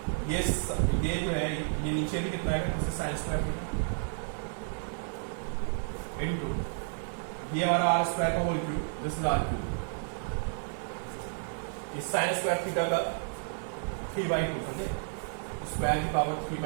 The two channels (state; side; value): silent; left; 57 dB below the other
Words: ये जो है ये नीचे भी कितना आएगा, जैसे साइन स्क्वायर थीटा इंटू ये हमारा आर स्क्वायर का whole cube, this is R cube, इस साइन स्क्वायर थीटा का 3/2, समझे, स्क्वायर की पावर